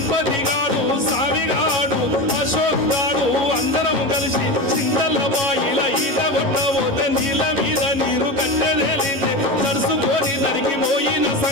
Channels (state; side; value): late; left; 11 ms